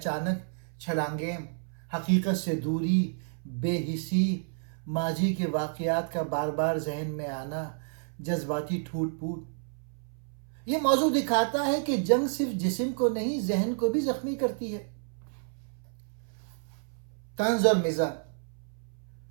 چھلانگیں، حقیقت سے دوری، بے حسی، ماضی کے واقعات کا بار بار ذہن میں آنا، جذباتی ٹوٹ پھوٹ۔ یہ موضوع دکھاتا ہے کہ جنگ صرف جسم کو نہیں، ذہن کو بھی زخمی کرتی ہے۔ طنز اور مزاح۔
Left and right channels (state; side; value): silent; left; 58 dB below the other